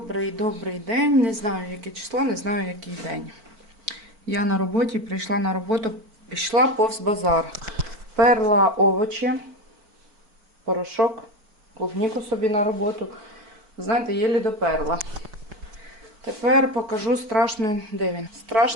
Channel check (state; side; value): late; left; 4.5 ms